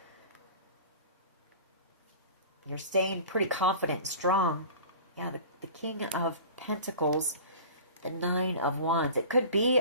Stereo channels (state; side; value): inverted; both; correlation -0.39